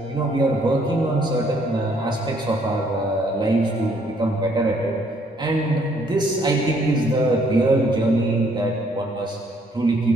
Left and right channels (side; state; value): both; normal; correlation 0.66